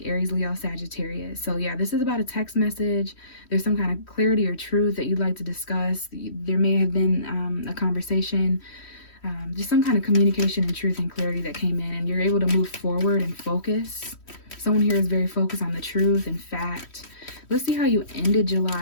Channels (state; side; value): late; right; 3.1 ms